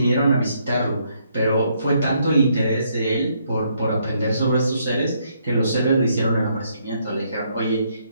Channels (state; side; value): inverted; both; correlation -0.72